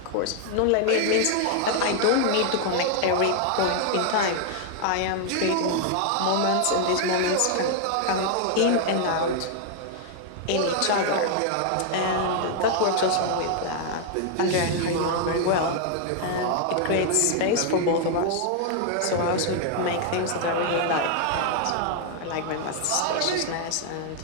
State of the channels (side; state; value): both; different; correlation 0.00